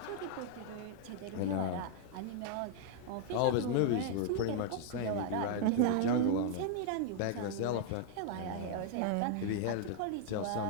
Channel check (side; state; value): both; different; correlation 0.00